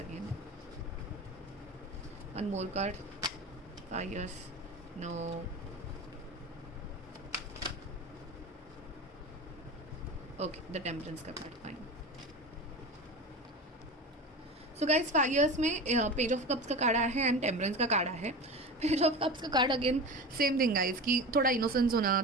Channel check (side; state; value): both; normal; correlation 0.29